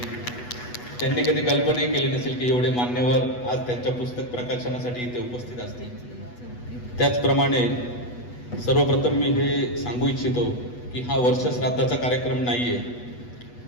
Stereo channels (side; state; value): right; late; 8.2 ms